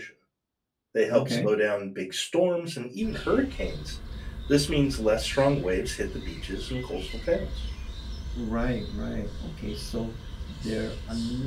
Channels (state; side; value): identical; both; correlation 1.00